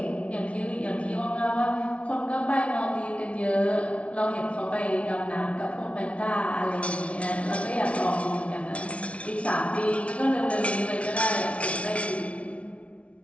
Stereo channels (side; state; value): right; late; 0.062 ms